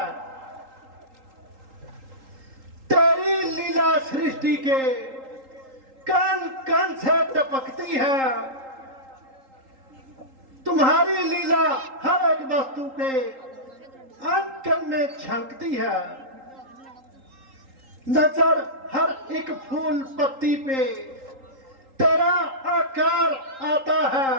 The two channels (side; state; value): left; late; 3.8 ms